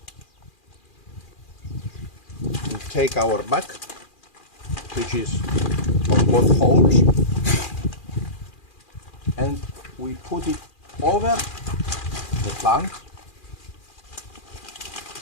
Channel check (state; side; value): late; right; 2.4 ms